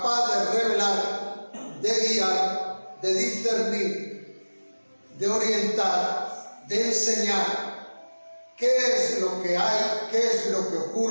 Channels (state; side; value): inverted; both; correlation -1.00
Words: de revelar, de guiar, de discernir, de orientar, de enseñar qué es lo que hay, qué es lo que